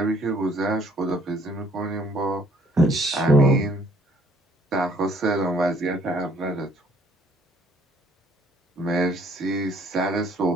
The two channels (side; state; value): both; normal; correlation 0.61